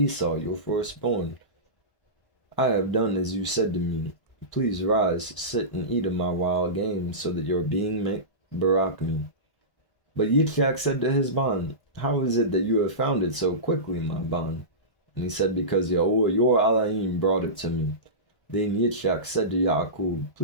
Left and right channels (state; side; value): late; right; 1.0 ms